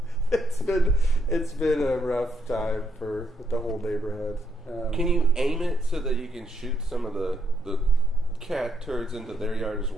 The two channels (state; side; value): normal; both; correlation 0.76